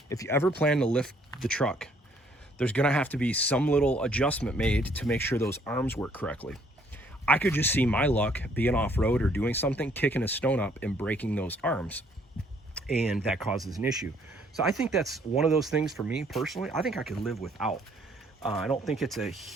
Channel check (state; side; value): normal; both; correlation 0.64